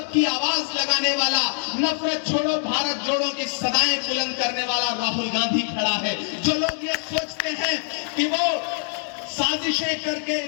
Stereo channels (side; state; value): right; silent; digital silence